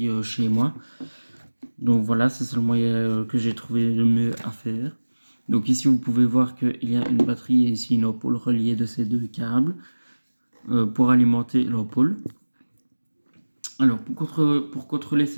chez moi. Donc voilà, c'est le moyen que j'ai trouvé le mieux à faire. Donc ici, vous pouvez voir qu'il y a une batterie et ici une ampoule reliée de ces deux câbles pour alimenter l'ampoule. Alors, pour contrôler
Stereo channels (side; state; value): both; inverted; correlation -1.00